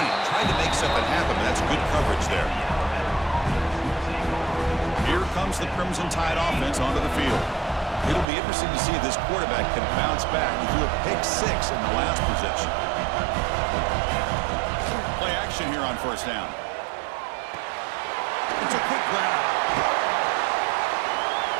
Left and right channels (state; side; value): drops out; left; at 8.2 s